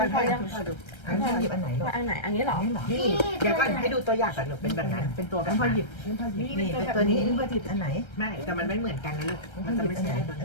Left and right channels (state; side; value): late; right; 1.3 ms